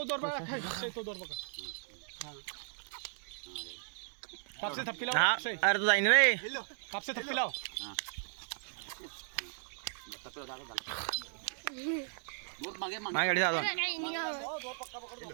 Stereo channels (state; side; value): silent; left; digital silence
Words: दोर पकड अक्षय तो दोर पकड कापसे थप्पी लाव अक्षय अरे तू जाईन रे कापसे थप्पी लाव माय गाडी जातो